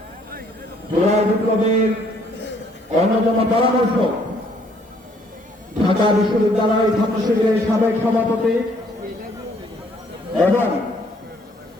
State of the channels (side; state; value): both; normal; correlation 0.64